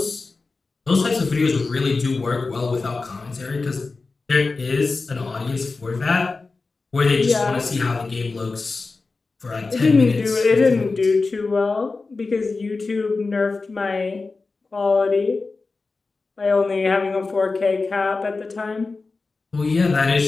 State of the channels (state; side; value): quieter; right; 3.9 dB